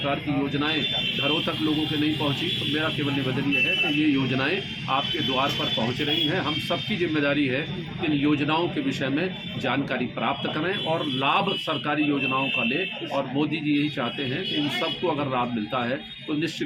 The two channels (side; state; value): both; identical; correlation 1.00